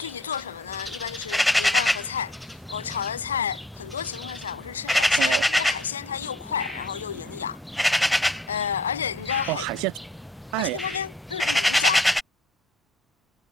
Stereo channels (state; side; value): normal; both; correlation 0.57